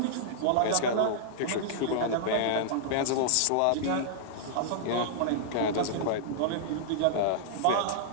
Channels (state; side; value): different; both; correlation -0.01